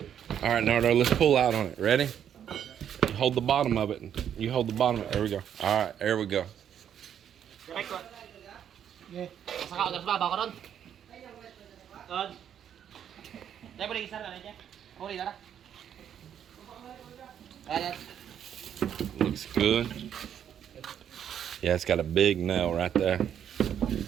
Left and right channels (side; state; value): left; quieter; 9.2 dB